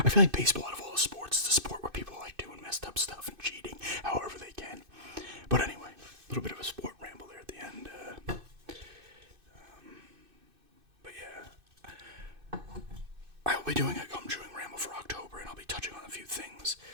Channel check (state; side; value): late; left; 2.6 ms